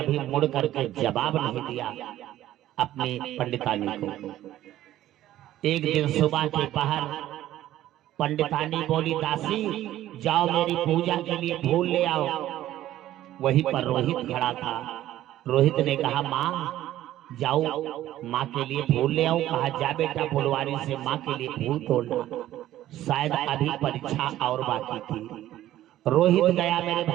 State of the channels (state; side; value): quieter; left; 13.6 dB